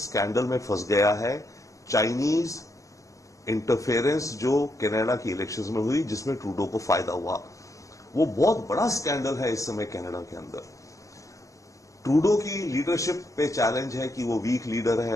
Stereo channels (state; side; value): late; right; 0.16 ms